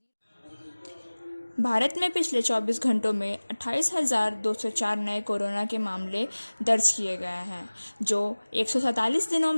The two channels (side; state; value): both; inverted; correlation -1.00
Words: Bharat में पिछले 24 घंटों में 28,204 नए कोरोना के मामले दर्ज किए गए हैं, जो 147 दिनों